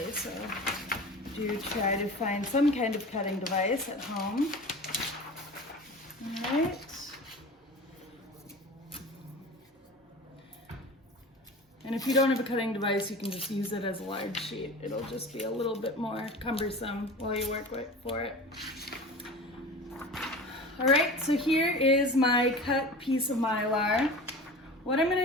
so do try to find some kind of cutting device at home. All right. And if you don't have a cutting device, you can just use it as a large sheet. It'll just be a little bit more cumbersome while you work for it. All right, so here is my cut piece of Mylar. What I'm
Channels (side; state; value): both; normal; correlation 0.36